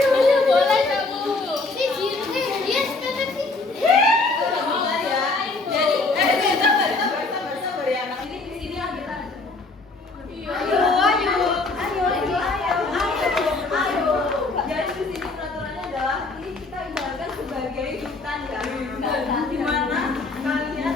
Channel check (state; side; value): quieter; right; 3.5 dB